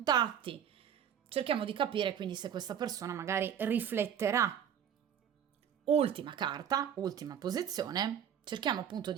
Cerchiamo di capire quindi se questa persona magari rifletterà. Ultima carta, ultima posizione, cerchiamo appunto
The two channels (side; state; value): left; quieter; 9.0 dB